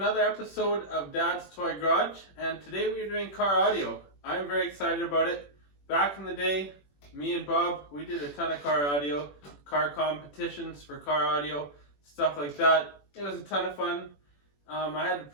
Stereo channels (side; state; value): right; late; 21 ms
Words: episode of Dad's Toy Garage, and today we are doing car audio. I'm very excited about it. Back in the day, me and Bob, we did a ton of car audio, car competitions for car audio, stuff like that. It was a ton of fun. I had